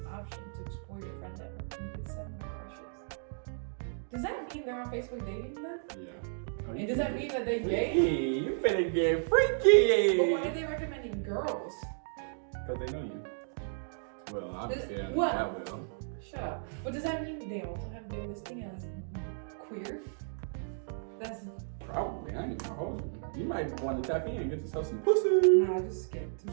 option to explore your friend network, and you can send them crushes. Does that mean they're on Facebook dating then? Yeah. And does that mean that they gay? You finna get freaky. But why are they recommending girls? Because they know you. Well, obviously, I know what? that will. Shut up. But does that mean they also have their listing as queer? That's probably. I ain't gonna hold you. You might want to tap in and get yourself some pussy. Nah, I just skipped.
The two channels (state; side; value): silent; left; digital silence